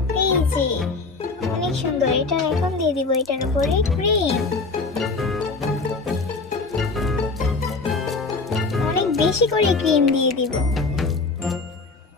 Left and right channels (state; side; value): quieter; right; 3.9 dB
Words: এই যে অনেক সুন্দর। এটা এখন দিয়ে দিব এটার উপরে ক্রিম। অনেক বেশি করে ক্রিম দিয়ে দিব।